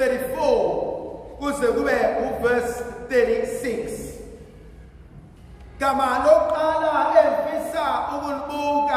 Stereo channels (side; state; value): both; identical; correlation 1.00